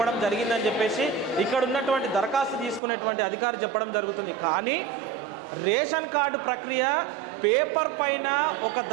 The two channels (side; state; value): left; drops out; at 2.8 s